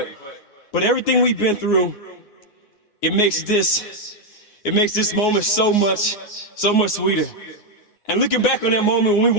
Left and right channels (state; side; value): late; right; 9.6 ms